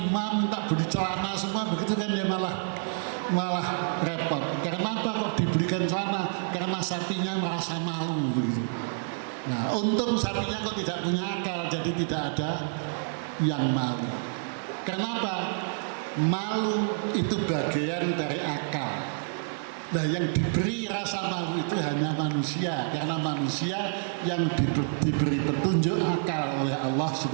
minta beli celana semua begitu kan, dia malah repot. Karena apa kok dibelikan celana? Karena sapinya merasa malu begitu. Nah, untung sapinya kok tidak punya akal, jadi tidak ada yang malu. Kenapa? Malu itu bagian dari akal. Nah, yang diberi rasa malu itu hanya manusia, karena manusia yang diberi petunjuk akal oleh Allah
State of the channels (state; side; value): silent; left; digital silence